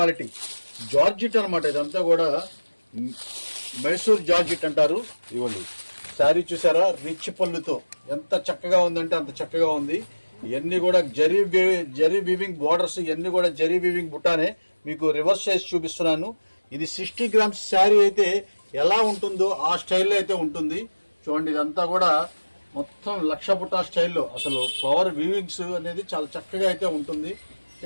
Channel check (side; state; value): both; inverted; correlation -1.00